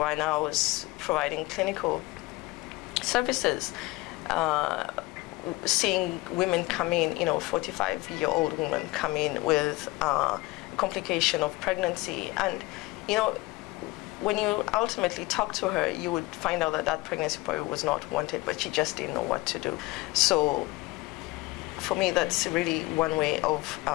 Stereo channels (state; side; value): quieter; right; 21.2 dB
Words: I was providing clinical services, seeing women come in, 45-year-old women come in with complication of pregnancy. And, when you ultimately talk to her, you would find out that that pregnancy probably was not wanted, but she just didn't know what to do. So for me, that's really one way of